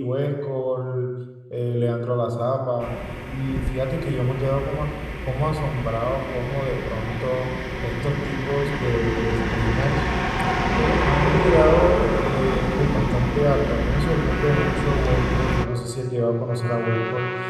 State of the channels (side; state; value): both; identical; correlation 1.00